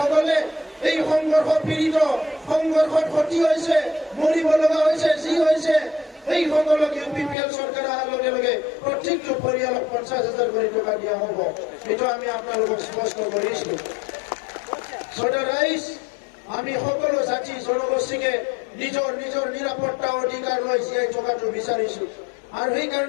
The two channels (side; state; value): right; drops out; at 7.4 s